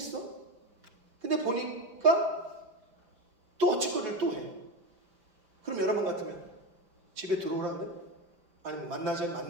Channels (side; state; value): left; late; 5.8 ms